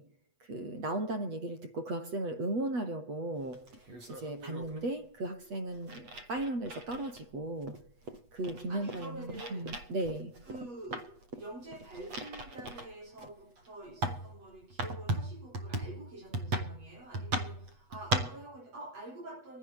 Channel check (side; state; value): left; late; 8.2 ms